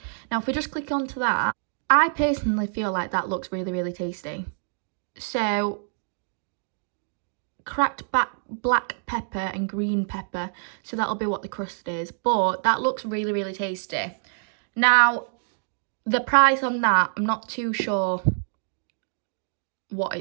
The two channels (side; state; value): left; silent; digital silence